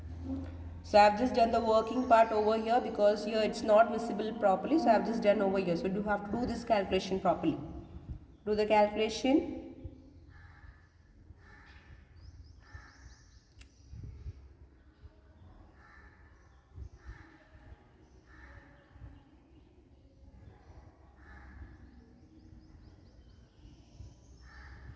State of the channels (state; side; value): identical; both; correlation 1.00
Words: So I have just done the working part over here because here it's not visible properly. So I have just done over here. So you have to do this calculation properly. Do the calculation.